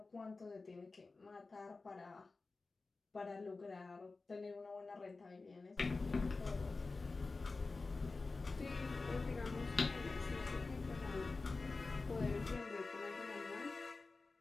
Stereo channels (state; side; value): quieter; right; 3.8 dB